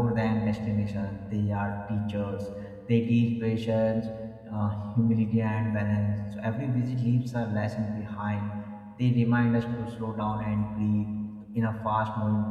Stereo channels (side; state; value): both; identical; correlation 1.00